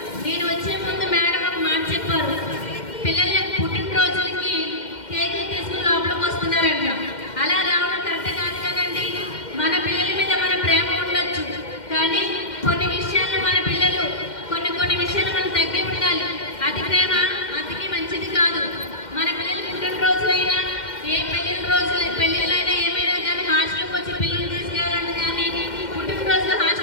నేను వచ్చే ముందు మేడం ఒక మాట చెప్పారు, పిల్లలు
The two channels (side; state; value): right; late; 2.1 ms